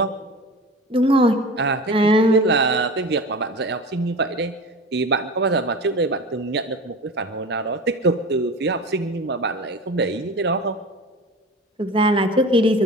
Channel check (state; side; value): normal; both; correlation 0.33